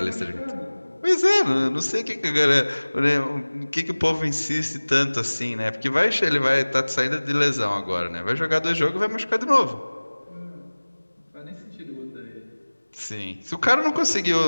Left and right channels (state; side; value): inverted; both; correlation -1.00